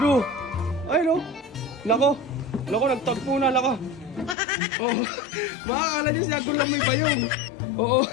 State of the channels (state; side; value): drops out; right; at 4.4 s